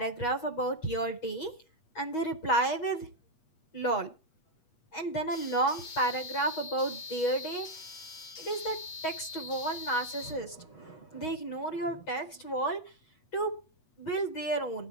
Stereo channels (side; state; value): right; late; 8.3 ms